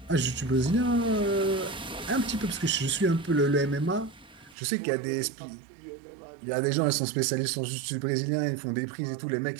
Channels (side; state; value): left; drops out; at 4.5 s